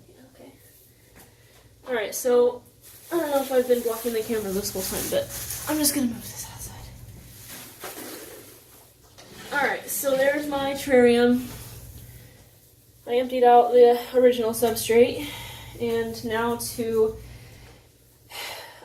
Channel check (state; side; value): identical; both; correlation 1.00